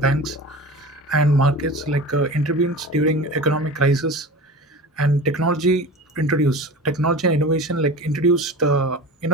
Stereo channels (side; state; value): both; normal; correlation 0.33